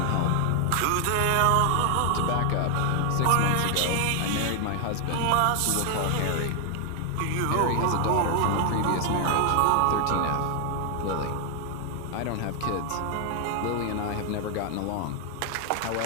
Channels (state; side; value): different; both; correlation 0.00